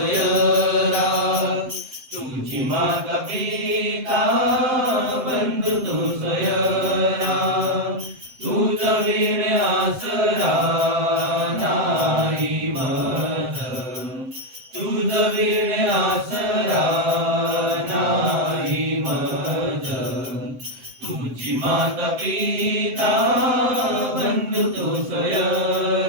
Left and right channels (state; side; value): late; left; 7.8 ms